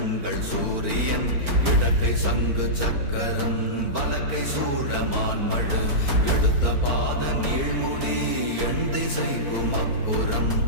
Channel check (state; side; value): late; left; 4.4 ms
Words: சூரியன் இடக்கை சங்கு சக்கரம் வலக்கை சூழமான்மழு எடுத்த பாத நீழ்முடி எண் திசைக்கும் அப்புறம்